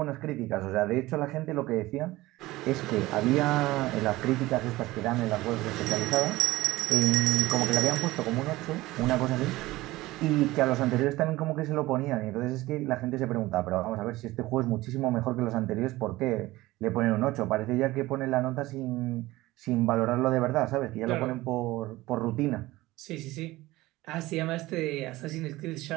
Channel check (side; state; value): left; quieter; 18.6 dB